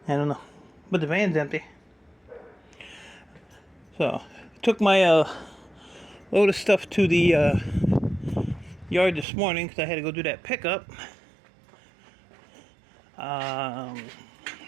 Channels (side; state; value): left; drops out; at 9.2 s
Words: I don't know. But the van's empty. So, took my load of stuff to the yard this morning because I had to go do that pickup.